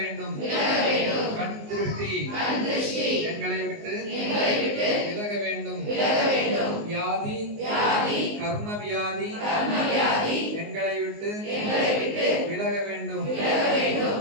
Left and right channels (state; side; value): late; left; 19 ms